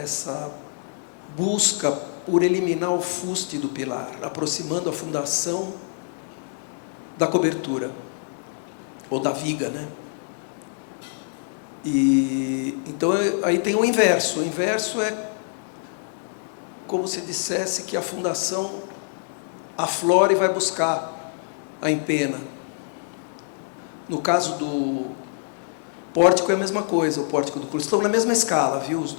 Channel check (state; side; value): silent; right; digital silence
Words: busca por eliminar o fuste do pilar, aproximando a fundação da cobertura, ou da viga, né? E então aí tem o inverso. O inverso é como se dissesse que a fundação aflora e vai buscar a empena. No caso do pórtico é a mesma coisa, o pórtico do clube. Estão na mesma escala, viu, os